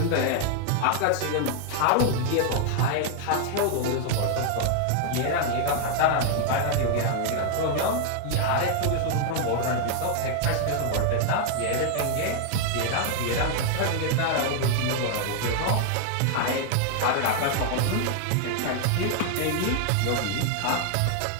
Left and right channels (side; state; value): both; different; correlation 0.00